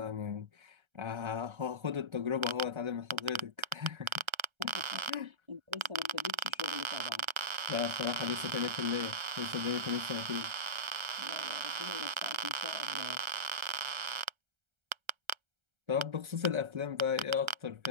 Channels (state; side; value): late; left; 1.3 ms